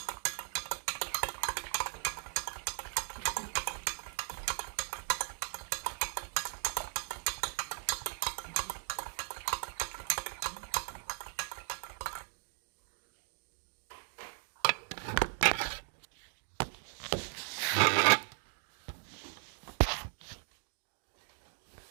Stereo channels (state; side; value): silent; left; 53 dB below the other